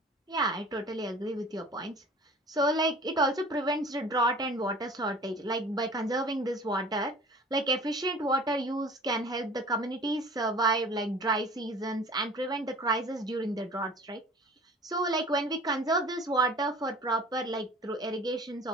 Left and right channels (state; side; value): normal; both; correlation 0.45